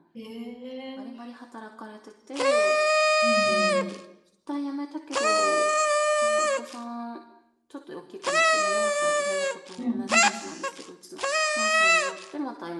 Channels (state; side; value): identical; both; correlation 1.00